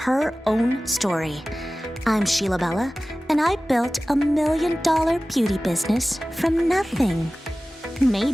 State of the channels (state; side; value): normal; both; correlation 0.97